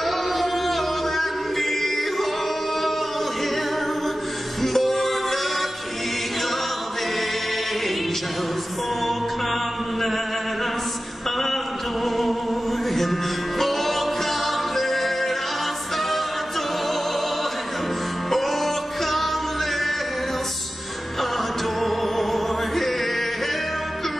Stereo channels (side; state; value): both; normal; correlation 0.95